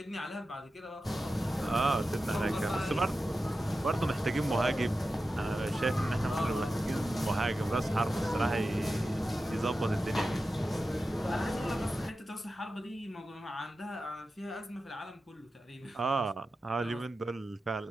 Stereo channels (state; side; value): normal; both; correlation 0.92